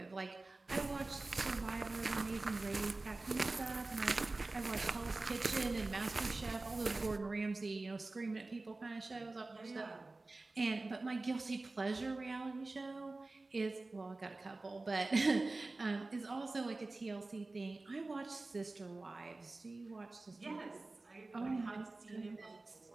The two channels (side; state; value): left; quieter; 3.2 dB